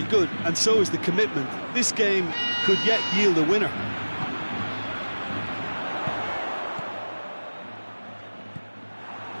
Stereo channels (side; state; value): both; inverted; correlation -1.00